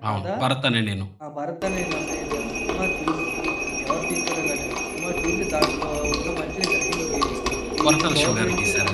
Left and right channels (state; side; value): identical; both; correlation 1.00